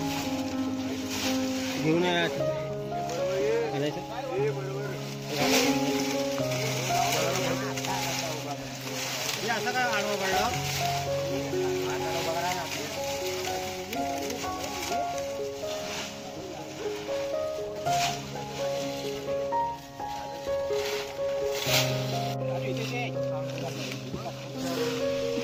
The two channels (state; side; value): identical; both; correlation 1.00